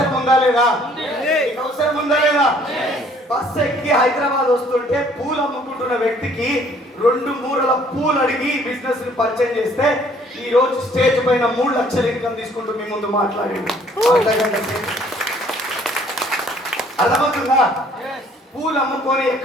ఉందా లేదా? మీకు అవసరం ఉందా లేదా? బస్సు ఎక్కి హైదరాబాద్ వస్తుంటే పూలు అమ్ముకుంటున్న వ్యక్తికి 2 మూరల పూలు అడిగి బిజినెస్ ని పరిచయం చేస్తే ఈ రోజు స్టేజ్ పైన 3 లక్షల ఇన్కమ్ తీసుకుంటూ మీ ముందు మాట్లాడింది. అర్థమవుతుందా? పూలు అమ్ముకొని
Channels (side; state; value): both; normal; correlation 0.59